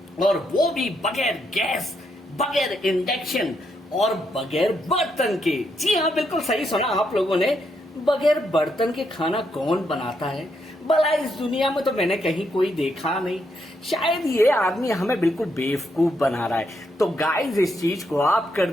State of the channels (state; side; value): normal; both; correlation 0.78